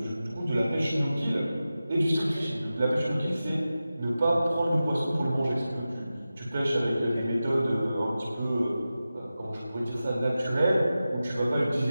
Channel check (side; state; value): both; inverted; correlation -0.94